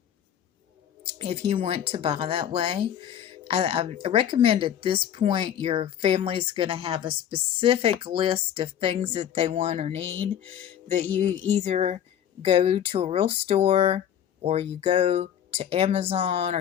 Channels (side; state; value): right; quieter; 9.9 dB